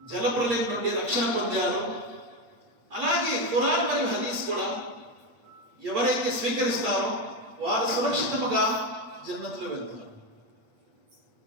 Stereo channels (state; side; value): late; left; 8.5 ms